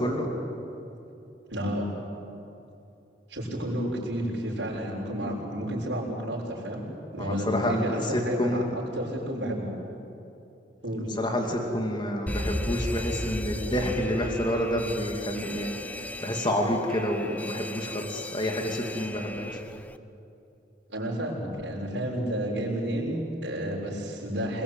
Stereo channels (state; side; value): normal; both; correlation 0.55